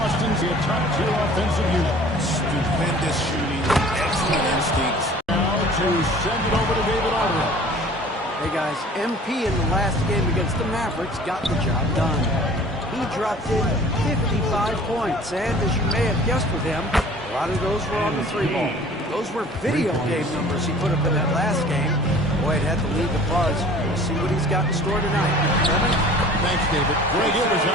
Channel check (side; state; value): both; normal; correlation 0.48